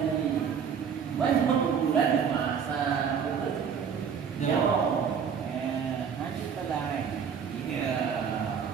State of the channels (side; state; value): left; quieter; 7.1 dB